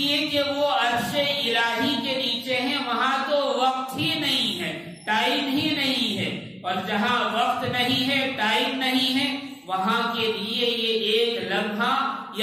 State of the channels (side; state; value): both; identical; correlation 1.00